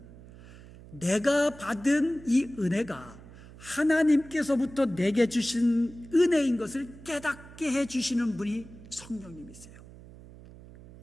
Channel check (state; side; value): noise; right; hum, 19 dB below the sound